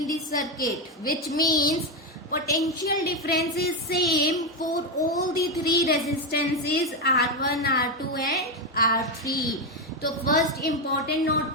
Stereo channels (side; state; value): both; normal; correlation 0.09